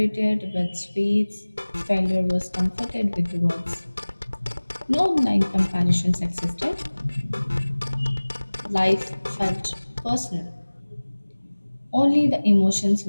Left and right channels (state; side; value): inverted; both; correlation -1.00